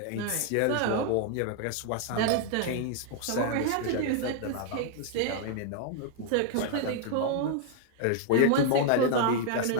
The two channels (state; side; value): different; both; correlation 0.00